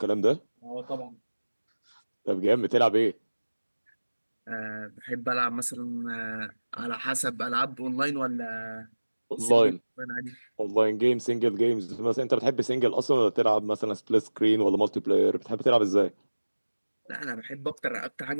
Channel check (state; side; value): inverted; both; correlation -1.00